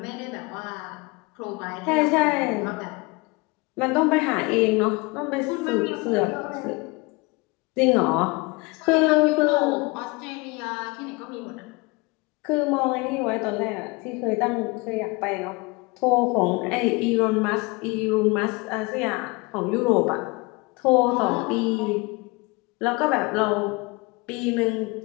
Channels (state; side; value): quieter; right; 26.1 dB